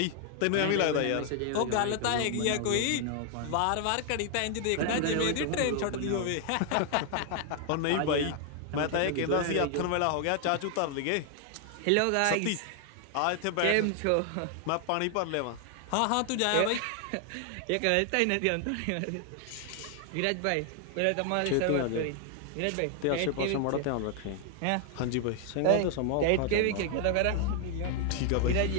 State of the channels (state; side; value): different; both; correlation 0.00